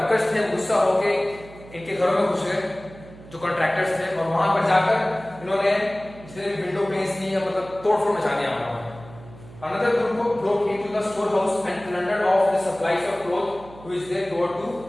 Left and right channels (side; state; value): right; noise; hum, 19 dB below the sound